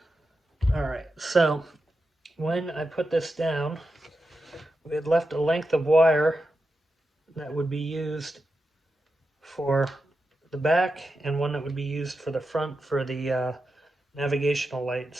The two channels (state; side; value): normal; both; correlation 0.89